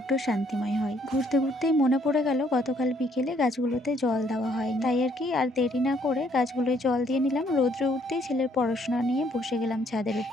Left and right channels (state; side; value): normal; both; correlation 0.67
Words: শান্তিময় হয়। ঘুরতে ঘুরতেই মনে পড়ে গেল গতকাল বিকেলে গাছগুলোতে জল দেওয়া হয়নি, তাই আর কি আর দেরি না করে গাছগুলোয় জল দিয়ে নিলাম। রৌদ্রে উঠতেই ছেলের পড়াশোনা নিয়ে বসে গেলাম ছাদের